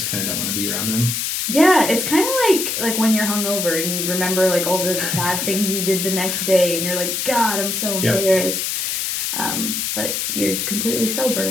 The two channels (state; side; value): noise; left; hiss, 1 dB below the sound